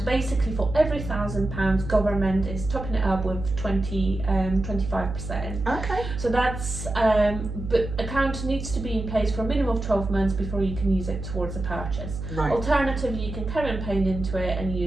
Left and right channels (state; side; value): noise; right; hum, 7 dB below the sound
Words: basically for every £1,000, government is topping it up with 25%. Okay. So that's but account needs to be in place for a minimum of 12 months before you can use it towards a purchase. Right. Alternatively, you can carry on paying into it and